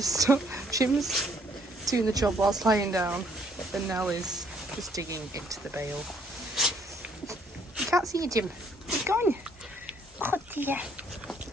stop. Jim's doing the job whilst lying down, and Nell is just digging into the bale. You can't see you, Jim. He's gone. Oh dear.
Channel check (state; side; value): normal; both; correlation 0.65